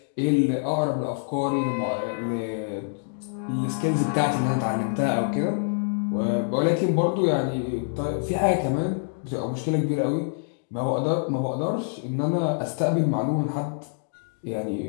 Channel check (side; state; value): right; silent; digital silence